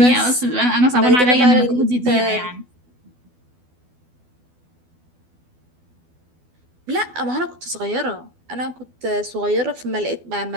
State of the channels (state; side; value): late; left; 12 ms